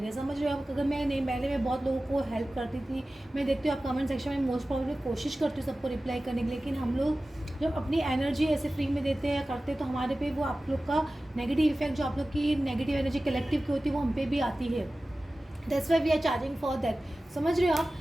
हैं। समझ रहे हो आप। अगर मैं नहीं, पहले मैं बहुत लोगों को हेल्प करती थी। मैं देखती हूँ आप कमेंट सेक्शन में मोस्ट प्रॉब्लम कोशिश करती हूँ सबको रिप्लाई करने की, लेकिन हम लोग जब अपनी एनर्जी ऐसे फ्री में देते हैं या करते हैं तो हमारे पे वो आप लोग का नेगेटिव इफेक्ट, जो आप लोग की नेगेटिव एनर्जी कलेक्टिव की होती है वो हम पे भी आती है। That's why we are charging for that. समझ रहे हो आप।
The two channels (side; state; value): both; normal; correlation 0.96